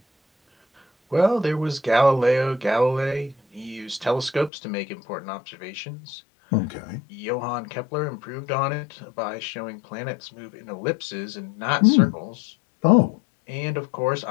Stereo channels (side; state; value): right; drops out; at 4.5 s